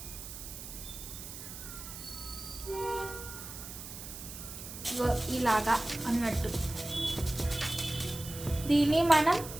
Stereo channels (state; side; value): noise; right; hiss, 11 dB below the sound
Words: ఇలాగా అన్నట్టు దీన్ని మనం